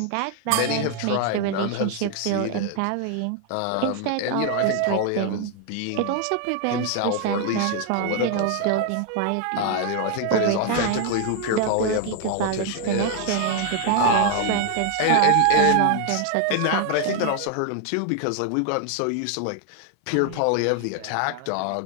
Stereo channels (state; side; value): different; both; correlation 0.00